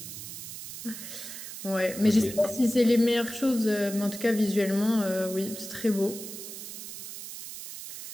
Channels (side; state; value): right; noise; hiss, 10 dB below the sound